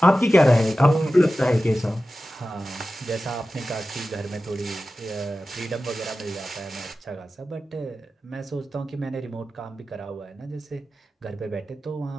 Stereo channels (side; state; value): both; normal; correlation 0.94